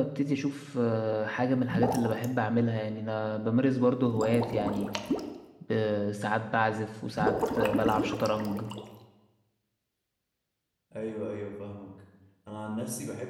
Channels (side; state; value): both; identical; correlation 1.00